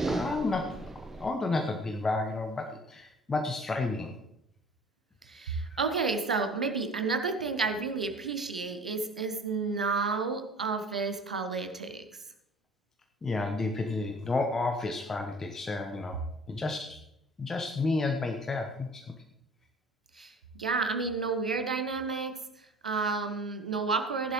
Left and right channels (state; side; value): normal; both; correlation 0.47